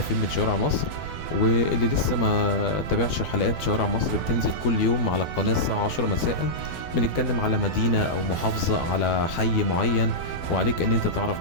فين من شوارع مصر. واللي لسه ما تابعش حلقات شوارع مصر بتنزل كل يوم على القناه الساعه 10 مساء. بنتكلم على مدينه او محافظه، على حي معين، وعليك ان انت تعرف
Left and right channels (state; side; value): late; right; 12 ms